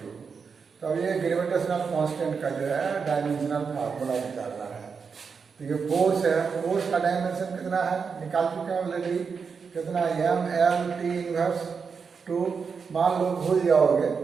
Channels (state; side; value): quieter; left; 5.7 dB